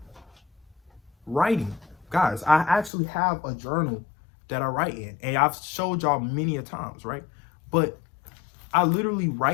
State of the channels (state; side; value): drops out; right; at 2.9 s